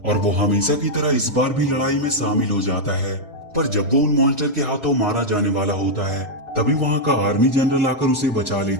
और वो हमेशा की तरह इस बार भी लड़ाई में शामिल हो जाता है। पर जब वो उन मॉन्स्टर के हाथों मारा जाने वाला होता है तभी वहाँ का आर्मी जनरल आकर उसे बचा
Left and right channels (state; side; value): normal; both; correlation -0.02